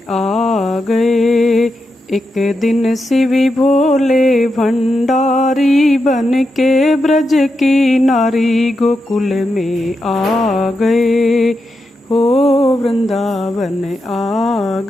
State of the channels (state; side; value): normal; both; correlation 0.86